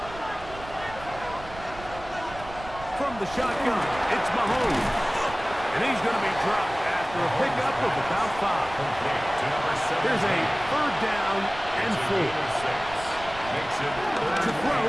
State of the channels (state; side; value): noise; right; rumble, 16 dB below the sound